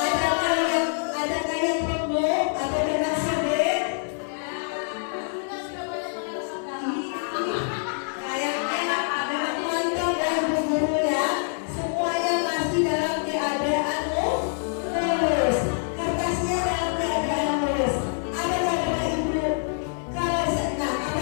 Adakah yang remuk atau dengan sobek? Kayaknya memang mantap ya ibu guru ya. Semuanya masih dalam keadaan lurus. Kertasnya dalam keadaan lurus. Apakah Bapak Ibu? Apakah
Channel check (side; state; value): right; silent; digital silence